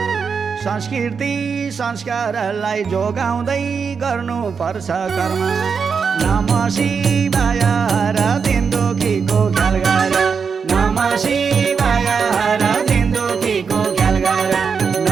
संस्कृति संस्कारलाई जोगाउँदै गर्नुपर्छ कर्म। नमः शिवाय हर दिन दुखीको ख्याल गर। नमः शिवाय हर दिन दुखीको ख्याल गर।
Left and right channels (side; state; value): left; quieter; 5.9 dB